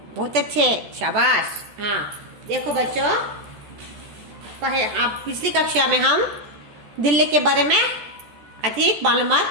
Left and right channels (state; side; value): late; left; 13 ms